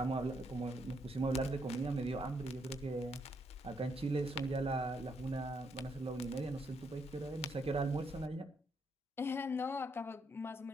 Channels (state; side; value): normal; both; correlation 0.75